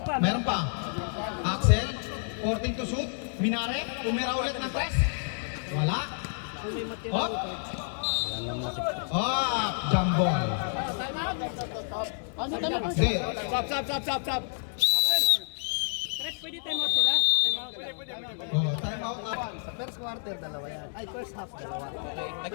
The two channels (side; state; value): right; silent; 58 dB below the other